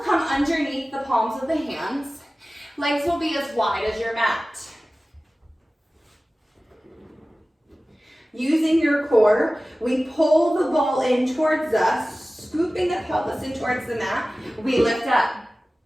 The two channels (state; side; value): normal; both; correlation 0.97